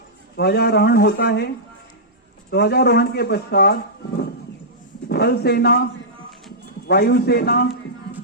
ध्वजारोहण होता है। ध्वजारोहण के पश्चात थल सेना, वायुसेना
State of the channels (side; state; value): both; normal; correlation -0.14